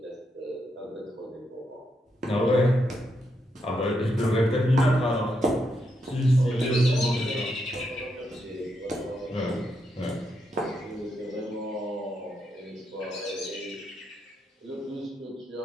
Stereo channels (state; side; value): normal; both; correlation 0.81